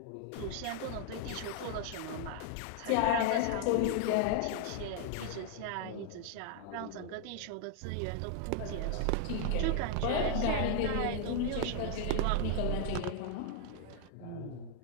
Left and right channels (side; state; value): both; different; correlation 0.00